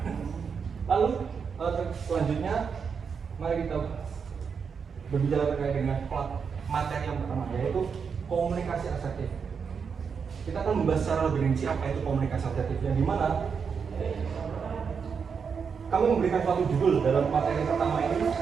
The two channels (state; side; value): quieter; left; 6.1 dB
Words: Lalu selanjutnya mari kita berbicara terkait dengan materi yang pertama yaitu komunikasi asertif. Kita akan membahas secara lebih rinci apa itu komunikasi asertif yang dimana kami memberikan suatu judul dalam materi pertama ini